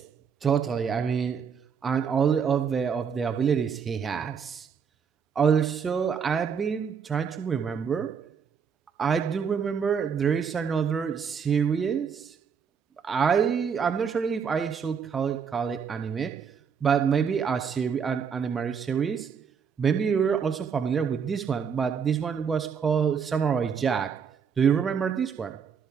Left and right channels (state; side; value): quieter; left; 6.7 dB